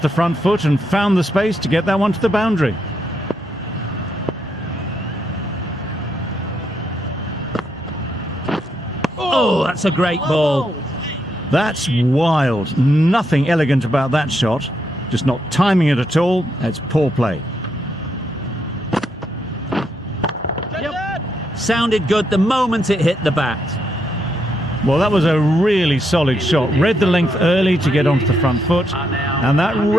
the front foot and found the space to get that one to the boundary. Oh, that's a great ball. That's wild. Nothing elegant about that shot. Just not timing it at all. That's poor play. Yep. Sounded good the moment it hit the bat. Well, that was a really solid shot. Read the length early to get onto the front foot, and that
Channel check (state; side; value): normal; both; correlation 0.78